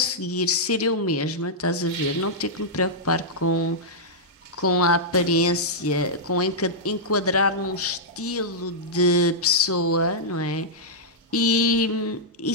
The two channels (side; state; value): both; normal; correlation -0.09